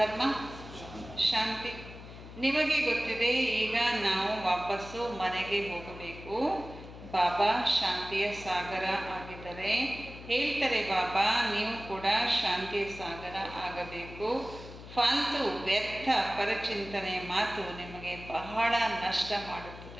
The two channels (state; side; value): noise; left; hum, 15 dB below the sound